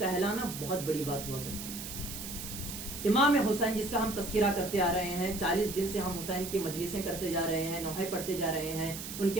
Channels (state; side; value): noise; right; hiss, 8 dB below the sound